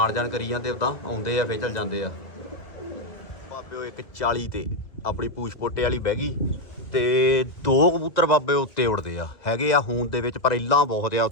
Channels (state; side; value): late; right; 2.2 ms